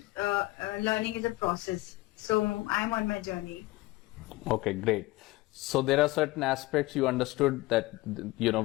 learning is a process. So I'm on my journey. Okay, great. So there are certain aspects you understood that,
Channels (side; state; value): right; quieter; 19.8 dB